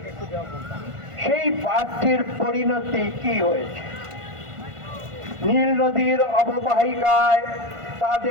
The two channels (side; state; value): left; late; 1.5 ms